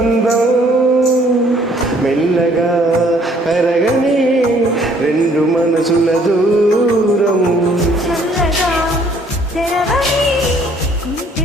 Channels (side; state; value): both; normal; correlation 0.61